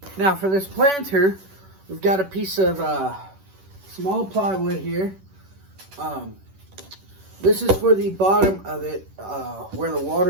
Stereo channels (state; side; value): late; left; 10 ms